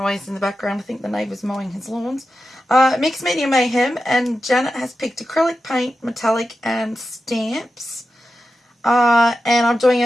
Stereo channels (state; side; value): normal; both; correlation 0.91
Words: in the background, I think the neighbour's mowing his lawns. Mixed Media Mayhem, and Janet has picked acrylic paint, metallic and stamps. And I'm doing